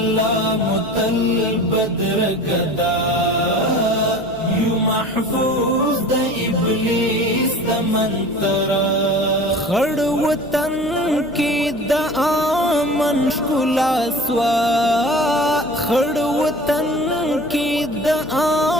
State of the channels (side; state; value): right; noise; hum, 21 dB below the sound